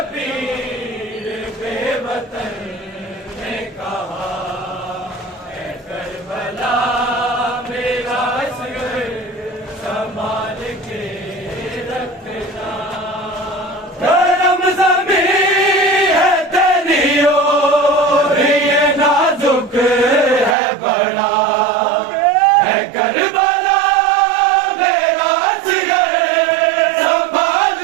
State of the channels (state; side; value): drops out; left; at 20.6 s